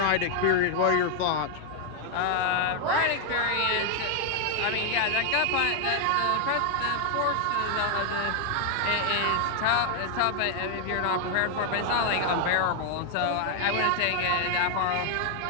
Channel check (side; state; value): both; different; correlation 0.00